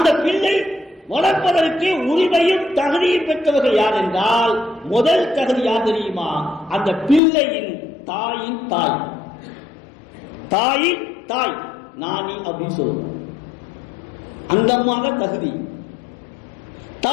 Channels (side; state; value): right; drops out; at 7.2 s